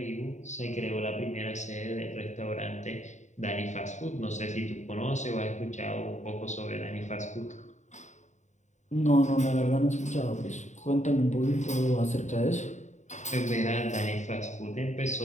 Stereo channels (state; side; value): late; right; 0.34 ms